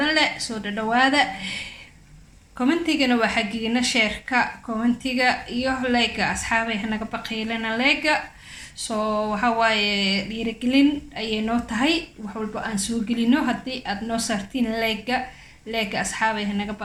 leh soo dhawaada. commentigana waa xaqiina sheerka commentiga iyo like asxaabay hanaga baqiilana like soo waxa waaye dhiirigelin ayay noo tahay wax walba aan soo gelino. haddii aad noo saartiin like asxaabay hanaga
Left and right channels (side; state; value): both; identical; correlation 1.00